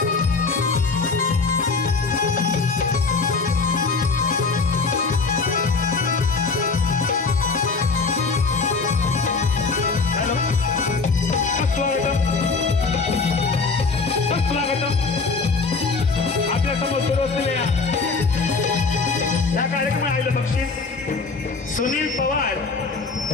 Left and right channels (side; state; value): right; quieter; 4.4 dB